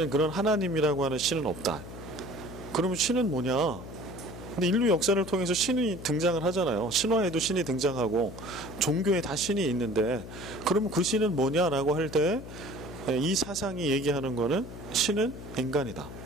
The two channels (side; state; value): left; noise; hum, 12 dB below the sound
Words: 그런 하나님이라고 하는 신은 없다. 그러면 신은 뭐냐? 근데 인류 역사를 통해서 신이 등장을 하잖아요. 신화에도 신이 등장하고 종교에 다 신이 있는데, 그러면 그 신은 뭐냐라고 할 때 이 사상이 얘기하는 거는 신은 인간이다.